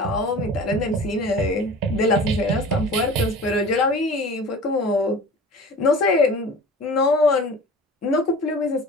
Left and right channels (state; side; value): normal; both; correlation 0.40